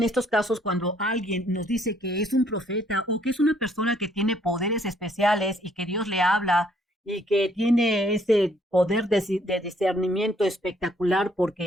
estos casos cuando alguien nos dice que es un profeta o que es una persona que tiene poderes especiales y que Dios le habla y que tiene ese poder de discernimiento espectacular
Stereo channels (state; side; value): normal; both; correlation 0.66